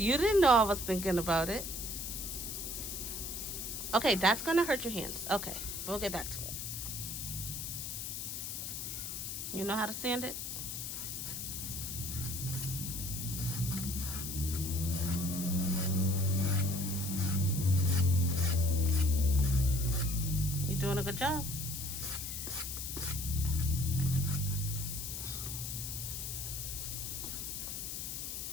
didn't know I was thinking about it. Okay, that's going to hurt your hands. Okay, we'll get back to it. You know how to sand it? You're doing a good job.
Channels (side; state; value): left; noise; hiss, 5 dB below the sound